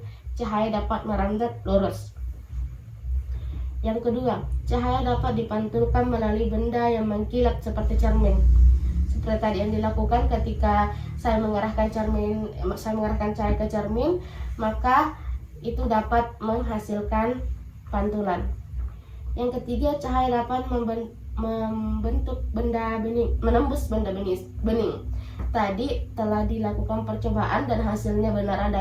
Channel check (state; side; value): identical; both; correlation 1.00